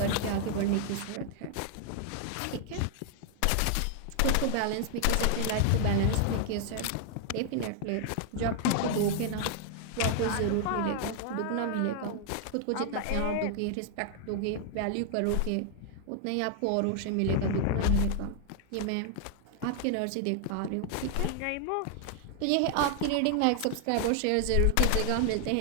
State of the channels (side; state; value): both; different; correlation 0.00